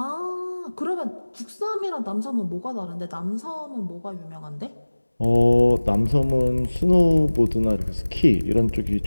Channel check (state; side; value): inverted; both; correlation -1.00